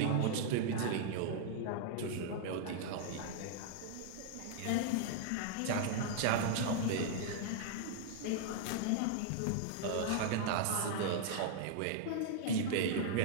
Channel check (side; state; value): both; different; correlation -0.01